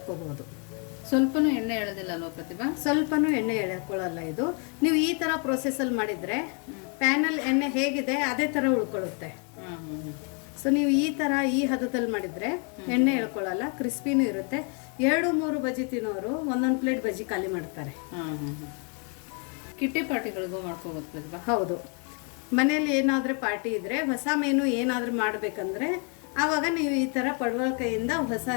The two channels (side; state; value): right; quieter; 38.3 dB